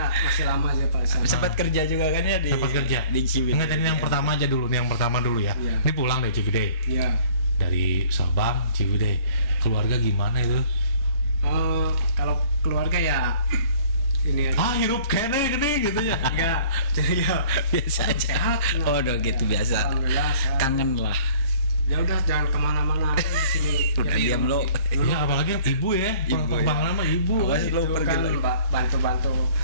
masih lama aja Pak. Sempat kerja juga kan ya di Ciwidey. Enggak, ini yang pertama aja dulu, yang pertama dulu ya. Ini pulang dari Ciwidey. Iya. Dari Sabang, Ciwidey. Keluarga gimana itu? Kalau keluarga ya ini aja. Hirup kene gini gitu ya. Enggak, jadi ya biasa aja. Sehat. Oh, udah gitu biasa. Kangen lah. Ya udah jangan kemana-mana di sini. Udah diam lo. Iya, apalagi ibu ya. Bang lama ibu. Awas lo pergi kan bantu-bantu.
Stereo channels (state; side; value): inverted; both; correlation -0.53